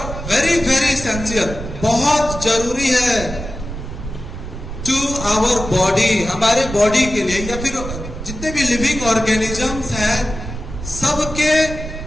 very very essential, बहुत जरूरी है टू आवर बॉडी, हमारे बॉडी के लिए, या फिर जितने भी लिविंग ऑर्गेनिजम्स हैं सबके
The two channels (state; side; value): noise; right; rumble, 9 dB below the sound